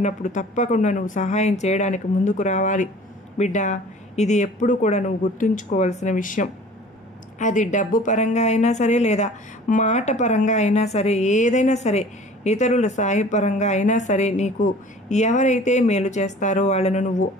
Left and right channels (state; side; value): normal; both; correlation 0.46